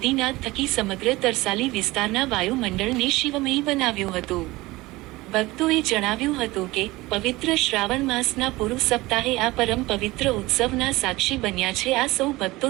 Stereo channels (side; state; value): left; quieter; 20.2 dB